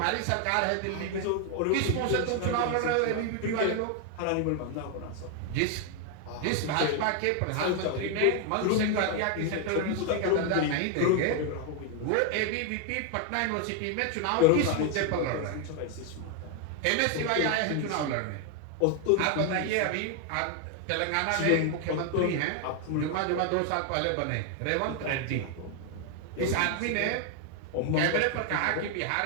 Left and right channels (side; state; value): both; different; correlation 0.01